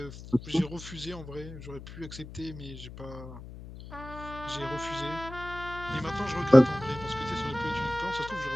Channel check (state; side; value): noise; left; hum, 13 dB below the sound